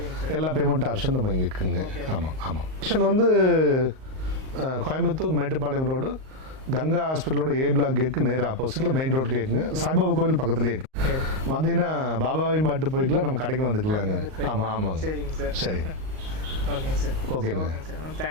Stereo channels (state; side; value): late; left; 38 ms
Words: எல்லா பேமெண்ட் ஆப்ஷன் நம்ம இங்கே இருக்குங்க. ஆமாம் ஆமாம். ஆப்ஷன் வந்து கோயம்புத்தூர் மேட்டுப்பாளையம் ரோடு, கங்கா ஹாஸ்பிட்டலோட ஏ பிளாக் கேட்க்கு நேராக ஆப்போசிட்டில் மெயின் ரோட்லேயே இருக்குங்க. சாய்பாபா கோவில் பக்கத்துலேயே இருக்கு. வந்தீங்கன்னா பாபாவையும் பாட்டு போய்க்கலாம், நம்ம கடைக்கு வந்துக்கலாங்க. ஆமாம் ஆமாங்க. சரிங்க சார். சரி, ஓகேங்க சார். ஓகேங்க.